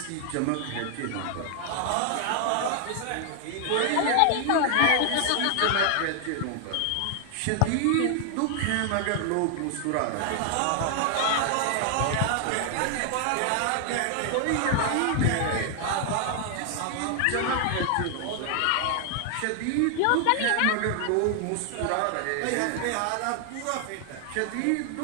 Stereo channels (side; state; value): both; different; correlation 0.00